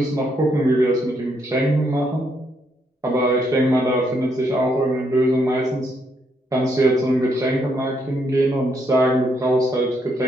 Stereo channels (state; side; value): normal; both; correlation 0.75